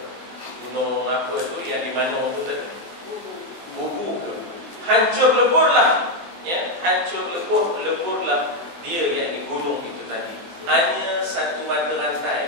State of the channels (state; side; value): late; left; 24 ms